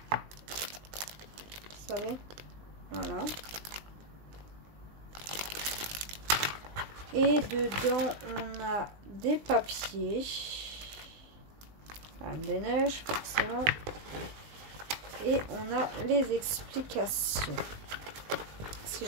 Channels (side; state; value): left; late; 20 ms